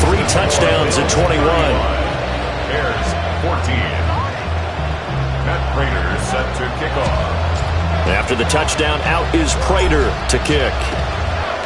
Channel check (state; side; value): identical; both; correlation 1.00